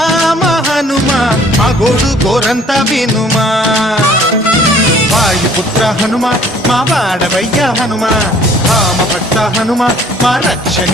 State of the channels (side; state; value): both; normal; correlation 0.55